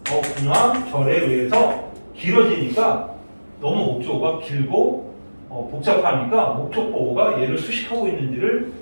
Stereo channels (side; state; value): both; inverted; correlation -1.00